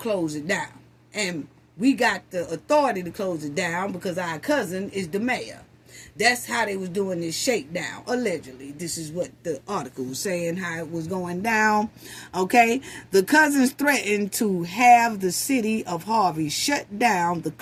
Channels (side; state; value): both; identical; correlation 1.00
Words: it down. And we got the authority to close it down because our cousin is the mayor. That's how they was doing this shakedown, allegedly. This is what the article was saying, how it was going down. Okay? The cousins threatened to have the city of Harvey shut down the